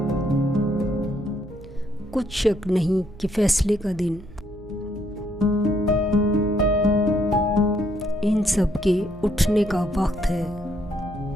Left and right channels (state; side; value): noise; right; hum, 18 dB below the sound